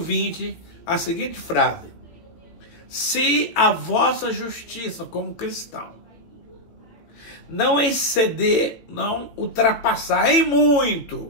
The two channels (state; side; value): late; right; 18 ms